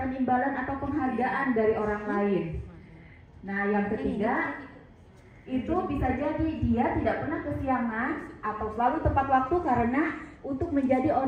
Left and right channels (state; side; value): identical; both; correlation 1.00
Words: imbalan atau penghargaan dari orang lain. Nah, yang ketiga itu bisa jadi dia tidak pernah kesiangan atau selalu tepat waktu karena untuk menjadi